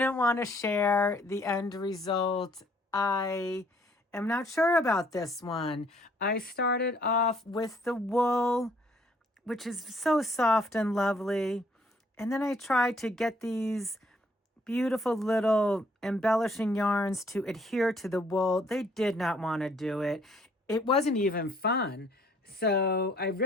want to share the end result. I am not sure about this one. I started off with the wool, which is so soft and lovely. And then I tried to get these beautiful little embellishing yarns to adhere to the wool. They did not want to do it. It wasn't even fun. So I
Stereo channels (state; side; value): normal; both; correlation 0.63